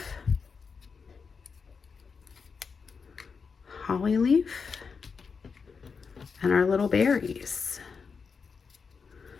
and our little berries.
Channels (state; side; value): quieter; right; 5.4 dB